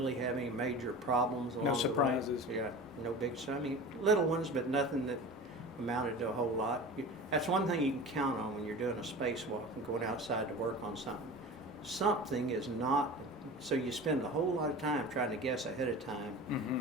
have any major problems along the way. No surprises. Yeah, no big, little ones, but nothing that amounted to a whole lot. That's one thing you can count on when you're doing a spacewalk and going outside to work on something. Something is not, so you spend a whole lot of time trying to guess ahead of time,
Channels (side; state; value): both; normal; correlation 0.34